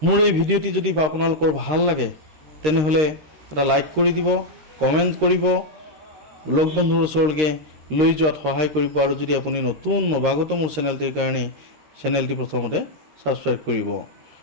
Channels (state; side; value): late; left; 13 ms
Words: মোৰ এই ভিডিঅ'টি যদি আপোনালোকৰ ভাল লাগে তেনেহ'লে এটা লাইক কৰি দিব, কমেণ্ট কৰিব, লগ বন্ধুৰ ওচৰলৈকে লৈ যোৱাত সহায় কৰিব আৰু যদি আপুনি নতুন নৱাগত মোৰ চেনেলটিৰ কাৰণে চেনেলটি প্ৰথমতে ছাবস্ক্ৰাইব কৰিব।